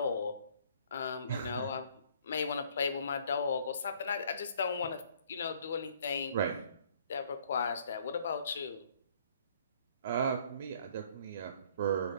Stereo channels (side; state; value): both; inverted; correlation -0.59